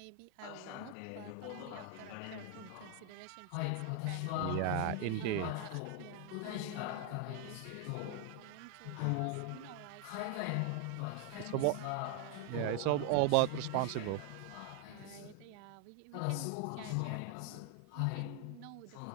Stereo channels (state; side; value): different; both; correlation 0.00